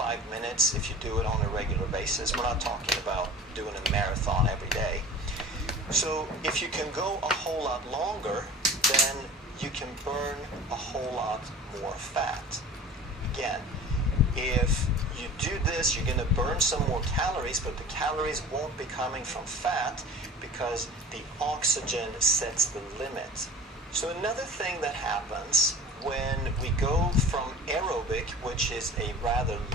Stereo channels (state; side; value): normal; both; correlation 0.40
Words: minutes if you do it on a regular basis. We're not talking about doing a marathon every day. So if you can go a whole lot longer, then you can burn a whole lot more fat. Again, if you do this, you're going to burn some more calories, but the calories won't be coming from fat because the oxygen sets the limit. So another thing that happens when we go from aerobic, which is a rather